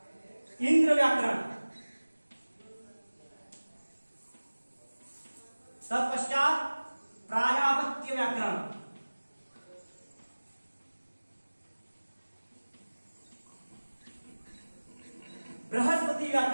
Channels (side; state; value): both; inverted; correlation -1.00